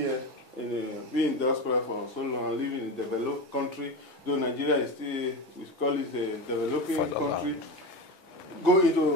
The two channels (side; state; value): both; normal; correlation 0.22